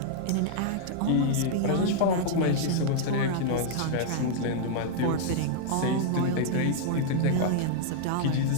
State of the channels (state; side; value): different; both; correlation -0.01